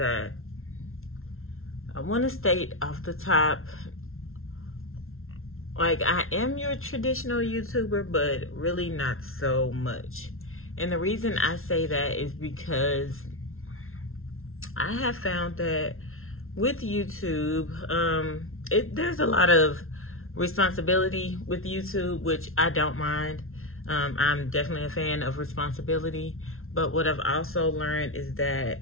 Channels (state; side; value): late; right; 0.62 ms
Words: I want to state off the top, like, I am your traditional YouTuber, but really not so much. And the reason I say that is because I have found that with YouTube, there's a lot of responsibility with YouTube, which I don't mind. I'm definitely a fan of responsibility, but what I've also learned is